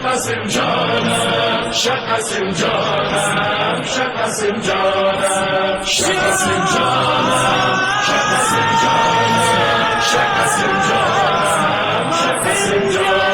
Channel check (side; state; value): both; identical; correlation 1.00